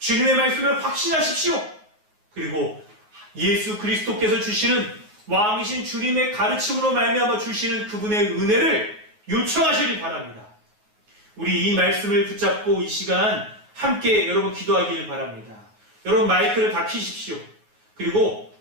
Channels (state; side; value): late; left; 9.4 ms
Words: 말씀을 확신하십시오. 그리고 예수 그리스도께서 주시는 왕이신 주님의 가르침으로 말미암아 주시는 그분의 은혜를 요청하시길 바랍니다. 우리 이 말씀을 붙잡고 이 시간 함께 여러분 기도하기를 바랍니다. 여러분 마이크를 다 켜십시오. 그리고